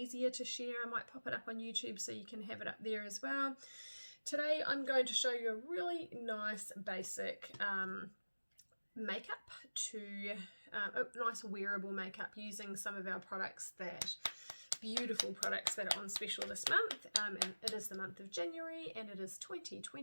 to share. I might pop it up on YouTube so you can have it up there as well. Today I'm going to show you a really nice basic makeup nice wearable makeup using some of our products beautiful products that are on special this month, and it is the month of January and it is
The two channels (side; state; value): both; inverted; correlation -1.00